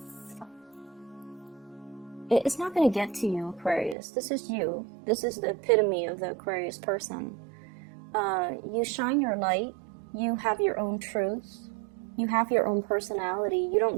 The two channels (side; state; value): left; drops out; at 4.0 s